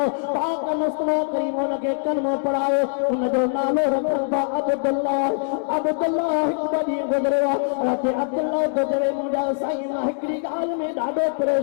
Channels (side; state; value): right; silent; 64 dB below the other